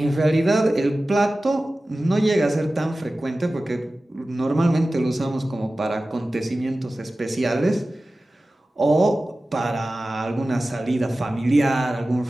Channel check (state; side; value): normal; both; correlation 0.96